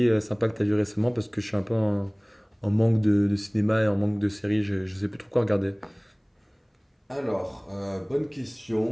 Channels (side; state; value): both; identical; correlation 1.00